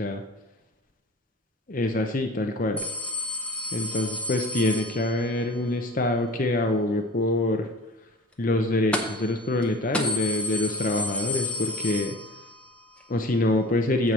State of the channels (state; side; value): normal; both; correlation 0.40